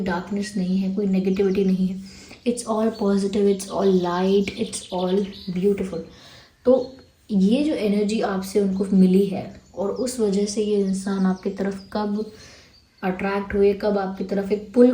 नहीं है, कोई नेगेटिविटी नहीं है। It's all positive, it's all light, it's all beautiful. तो ये जो एनर्जी आपसे उनको मिली है और उस वजह से ये इंसान आपकी तरफ कब अट्रैक्ट हुए, कब आपकी तरफ एक पुल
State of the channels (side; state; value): both; identical; correlation 1.00